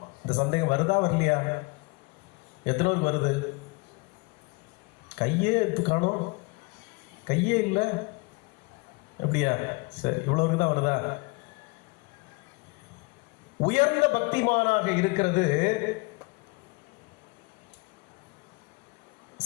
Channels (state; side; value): quieter; right; 27.6 dB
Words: இந்த சந்தேகம் வருதா வரலையா? எத்தனை பேருக்கு வருது? கையே எடுத்து காணும், கையே இல்லை. அப்படியா? சரி, இவ்வளவுக்கு தான் வருதா? உயர்ந்த பக்திமானாக இருக்கிறது